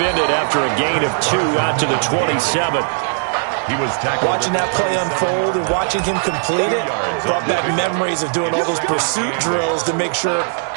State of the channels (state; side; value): silent; left; digital silence